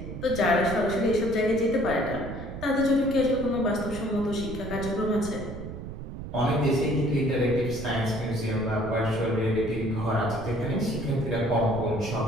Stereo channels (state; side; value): noise; right; rumble, 9 dB below the sound